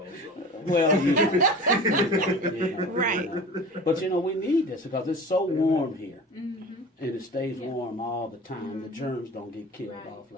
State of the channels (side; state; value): both; normal; correlation 0.38